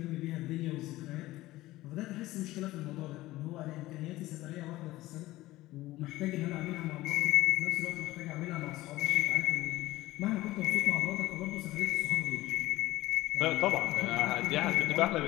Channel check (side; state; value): right; quieter; 17.3 dB